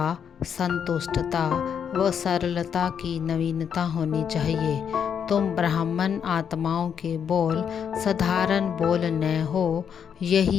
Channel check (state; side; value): quieter; right; 7.7 dB